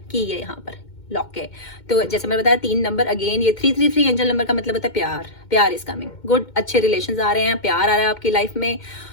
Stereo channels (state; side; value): late; right; 2.1 ms